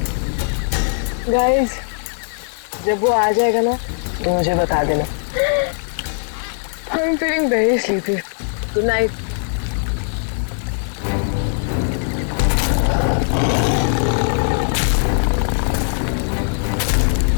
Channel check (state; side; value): silent; right; digital silence